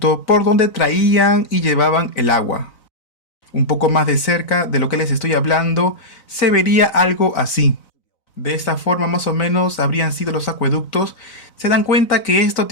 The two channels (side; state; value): right; late; 4.0 ms